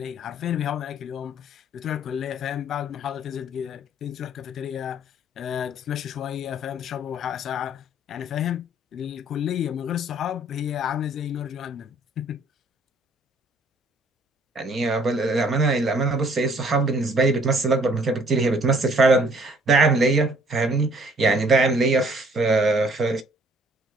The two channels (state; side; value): normal; both; correlation 0.60